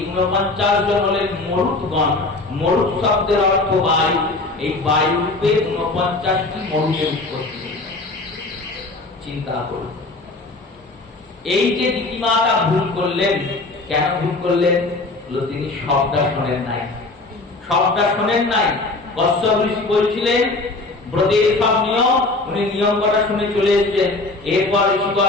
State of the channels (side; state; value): right; quieter; 3.2 dB